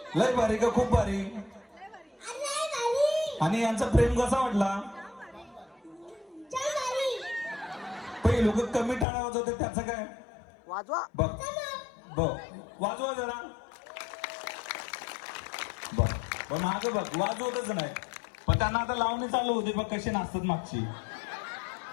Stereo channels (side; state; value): right; drops out; at 9.1 s